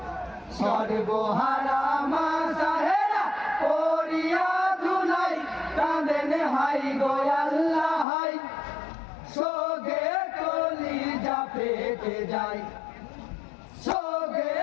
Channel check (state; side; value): drops out; right; at 8.1 s